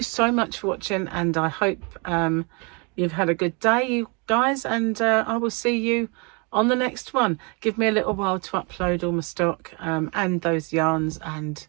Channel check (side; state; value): left; quieter; 32.5 dB